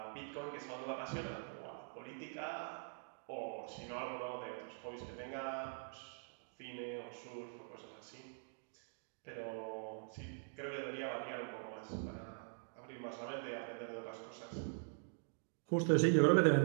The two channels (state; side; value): silent; left; digital silence